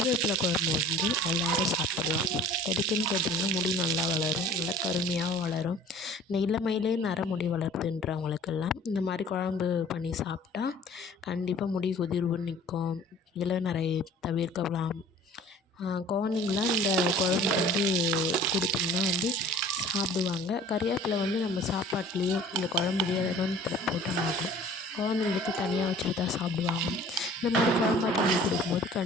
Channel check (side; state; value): both; normal; correlation 0.48